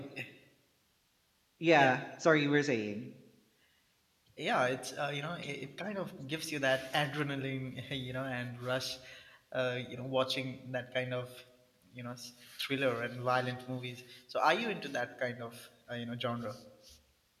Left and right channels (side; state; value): both; identical; correlation 1.00